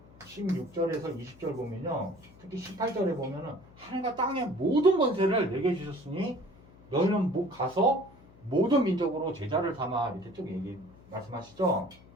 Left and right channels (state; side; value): noise; left; hum, 24 dB below the sound